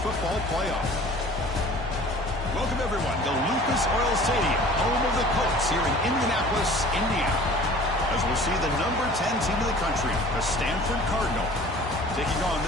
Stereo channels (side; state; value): right; noise; hum, 14 dB below the sound